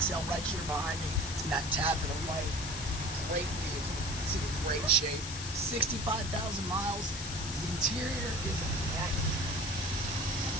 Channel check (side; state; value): left; noise; hiss, 7 dB below the sound